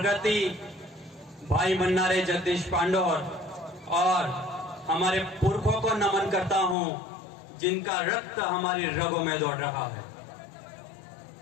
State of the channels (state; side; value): drops out; right; at 6.8 s